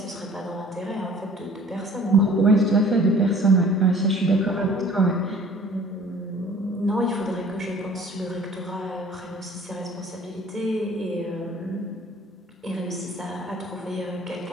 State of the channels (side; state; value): both; normal; correlation 0.51